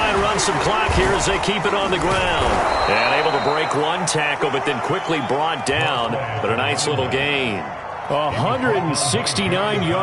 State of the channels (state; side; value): identical; both; correlation 1.00